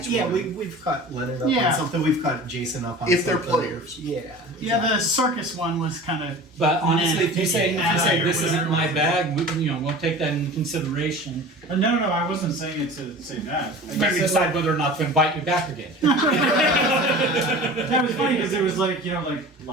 one. We've caught Leonard up Yeah. on something. We've caught Jason up on If they're something. players. Yeah. yeah, the circus one was kind of. But honestly, if you say Yeah. this isn't my bag, we'll take that into consideration. No, I wasn't saying it to say that. I Maybe just said, decide whether or not to invite you back again. that was funny because it was like, like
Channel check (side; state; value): both; normal; correlation 0.38